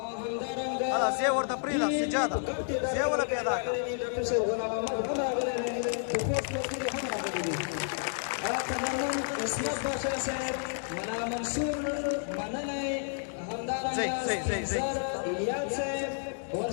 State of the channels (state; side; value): silent; right; digital silence